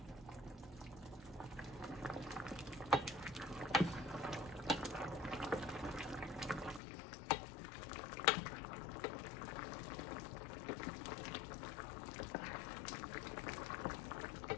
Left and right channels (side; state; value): right; drops out; at 6.8 s